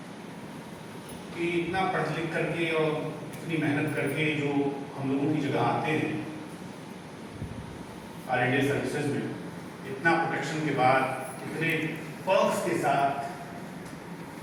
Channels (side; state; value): both; identical; correlation 1.00